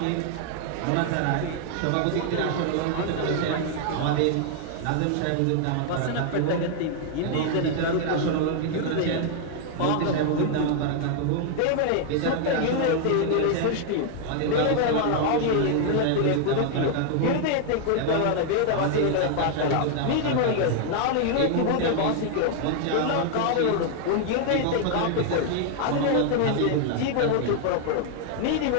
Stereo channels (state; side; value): different; both; correlation 0.00